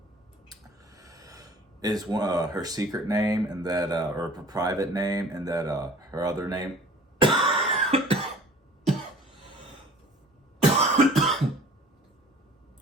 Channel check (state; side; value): normal; both; correlation 0.48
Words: is her secret name, and that, or her private name, and that her other name